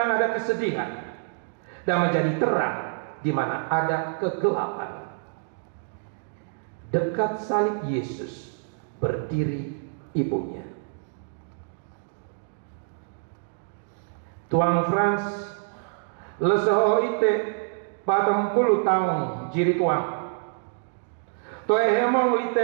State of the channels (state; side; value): silent; left; digital silence